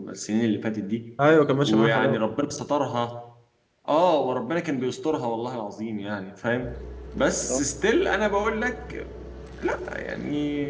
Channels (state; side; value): identical; both; correlation 1.00